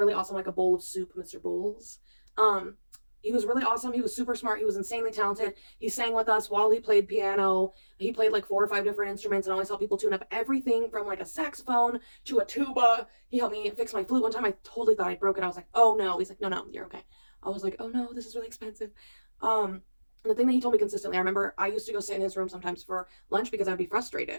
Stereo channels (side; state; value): both; inverted; correlation -1.00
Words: awesome, like a bowl of soup, Mr. Bowles. Um, he was really awesome. He was super smart. He was insanely talented. He sang with us while he played piano. He played like 4 or 5 different instruments and always helped people tune up everything from like a saxophone to a tuba. He helped me fix my flute one time. I totally thought I broke it. I was like, oh no. He's like, no, no, you're okay. I was like, oh no, this is really expensive. The thing that he told me consistently, I remember I used to go sit in his room sometimes for lunch because I'd be